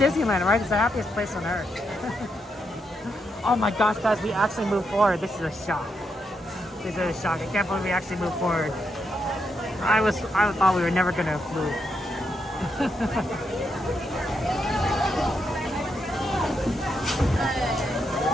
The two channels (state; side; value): normal; both; correlation 0.81